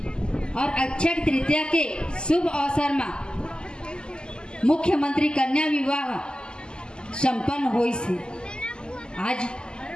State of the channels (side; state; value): right; late; 0.047 ms